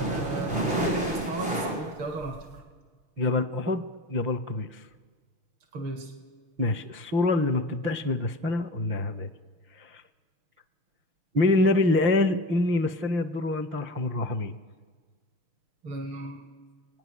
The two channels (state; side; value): late; left; 6.4 ms